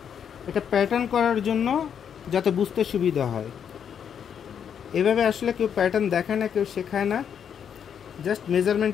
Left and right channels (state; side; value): quieter; right; 8.1 dB